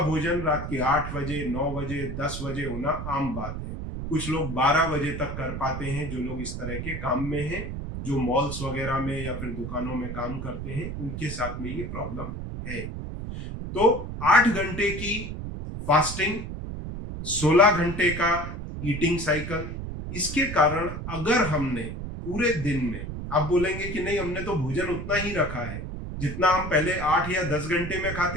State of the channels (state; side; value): noise; right; rumble, 6 dB below the sound